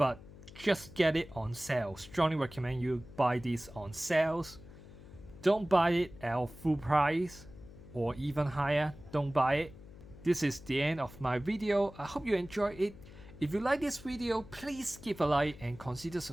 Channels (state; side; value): noise; left; hum, 18 dB below the sound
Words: just get it on sale. Strongly recommend you buy this on sales. Don't buy it at full price or even higher. Don't buy it. This is the end of my video. I hope you enjoyed it. If you like this video, please give a like and consider